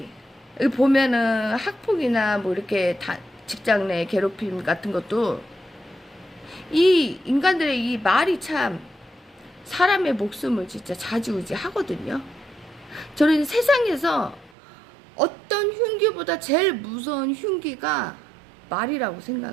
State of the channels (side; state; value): left; drops out; at 14.5 s